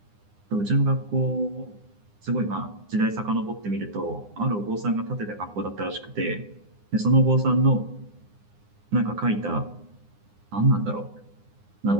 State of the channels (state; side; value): late; left; 9.8 ms